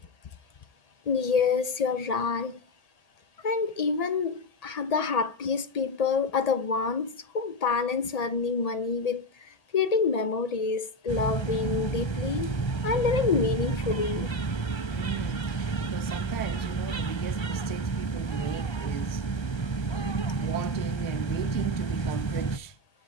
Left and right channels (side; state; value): right; late; 1.8 ms